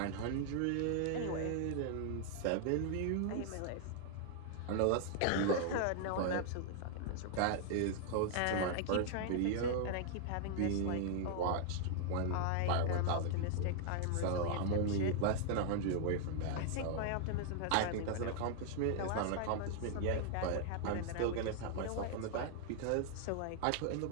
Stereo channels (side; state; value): both; different; correlation 0.00